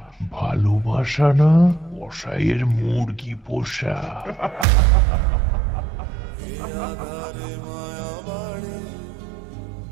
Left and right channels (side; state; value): left; drops out; at 4.7 s